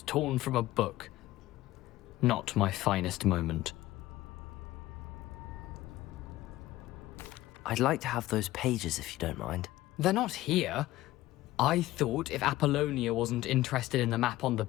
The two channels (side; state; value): right; quieter; 16.5 dB